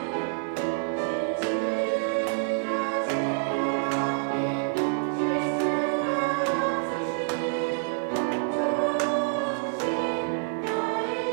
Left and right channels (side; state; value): left; silent; digital silence